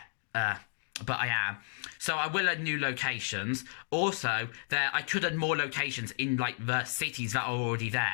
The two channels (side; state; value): right; silent; digital silence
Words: but I am. So I will add new locations. Also, I could add more locations in like the cities that are already